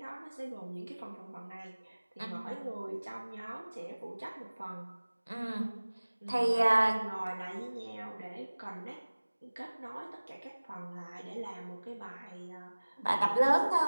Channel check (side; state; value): both; inverted; correlation -1.00